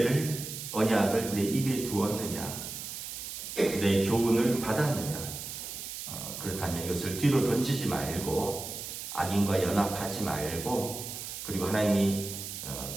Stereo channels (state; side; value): noise; right; hiss, 8 dB below the sound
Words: 언약을 내 입에 두었느냐, 내 교훈을 받았느냐. 그렇다면 이것을 뒤로 던지지 말고 악인과 연합하지 말고 그리고 하나님이